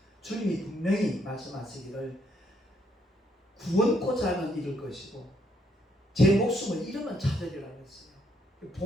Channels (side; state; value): both; normal; correlation 0.72